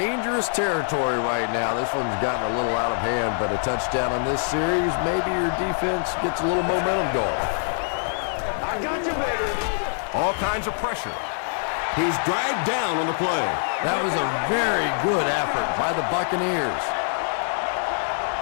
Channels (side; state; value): right; silent; 62 dB below the other